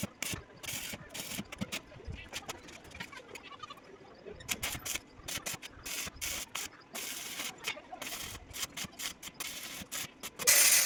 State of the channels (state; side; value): identical; both; correlation 1.00